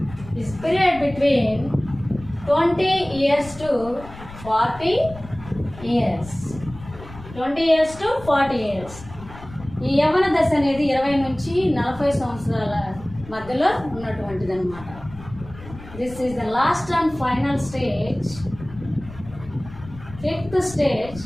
This period between 20 years to 40 years. 20 years to 40 years. ఈ యవ్వన దశ అనేది 20 నుంచి 40 సంవత్సరాల మధ్యలో ఉన్నటువంటిది అనమాట. This is the last and final stage. Fifth stage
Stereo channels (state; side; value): noise; left; rumble, 16 dB below the sound